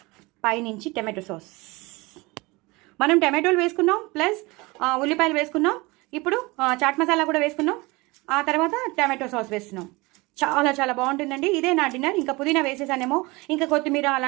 పైనుంచి టమాటో సాస్. మనం టమాటోలు వేసుకున్నాం, ప్లస్ ఉల్లిపాయలు వేసుకున్నాం. ఇప్పుడు చాట్ మసాలా కూడా వేసుకున్నాం. ఆ తర్వాత టమాటో సాస్ వేస్తున్నాం. చాలా చాలా బాగుంటుందండి. ఇదే నా డిన్నర్. ఇంకా పుదీనా వేసేసానేమో, ఇంకా కొత్తిమీర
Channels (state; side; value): quieter; left; 23.8 dB